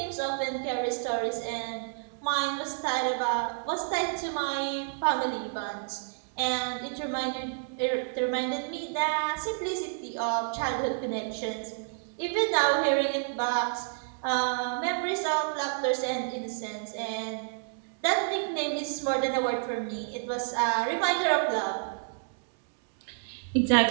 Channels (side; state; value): left; silent; digital silence